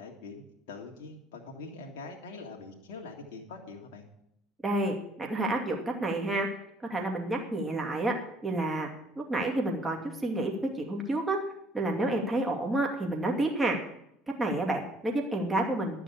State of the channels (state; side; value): normal; both; correlation 0.62